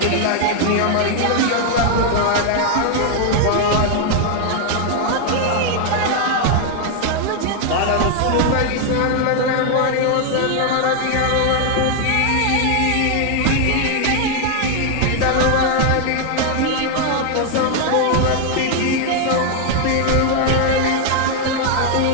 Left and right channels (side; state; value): both; different; correlation 0.00